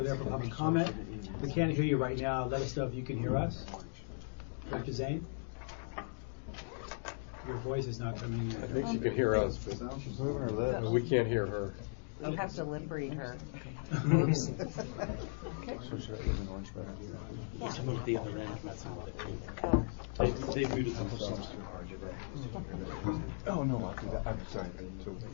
there for public comment. We can't hear you right now. Let us know if you can hear us. Director Zane? Your voice is not coming in. I think she can hear us, but She's moving her lips. we can't hear her. We have to lip read her. So should I use an orange better? Oh, no, I'll do that. I'm sorry. So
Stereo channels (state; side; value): silent; right; digital silence